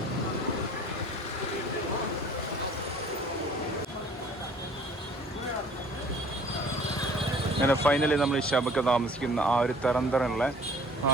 അങ്ങനെ ഫൈനലി നമ്മൾ ഷാബക്ക താമസിക്കുന്ന ആ ഒരു തരന്തറുള്ള ആ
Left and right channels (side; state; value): both; normal; correlation 0.52